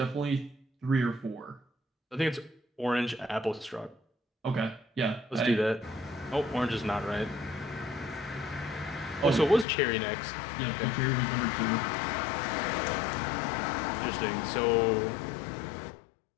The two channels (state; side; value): drops out; right; at 9.7 s